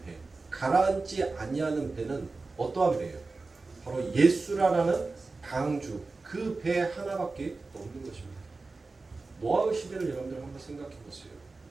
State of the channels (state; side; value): quieter; left; 3.7 dB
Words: 배, 가라앉지 아니하는 배는 어떠한 배예요? 바로 예수라는 강주, 그 배 하나밖에 없는 것입니다. 노아의 시대를 여러분들 한번 생각해 보세요.